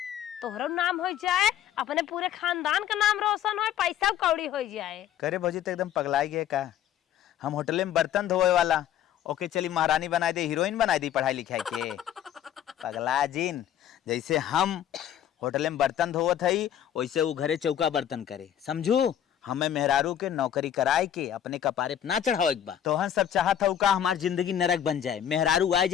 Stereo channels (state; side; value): quieter; right; 10.3 dB